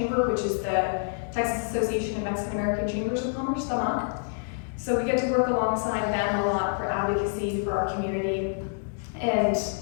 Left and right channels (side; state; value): right; silent; 59 dB below the other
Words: which is the Texas Association of Mexican American Chambers of Commerce, TAMAC. So we get to work alongside them a lot for advocacy for our community, and